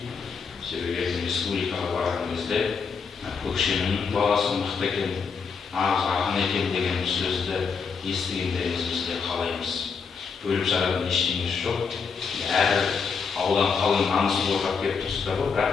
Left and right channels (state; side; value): quieter; right; 5.6 dB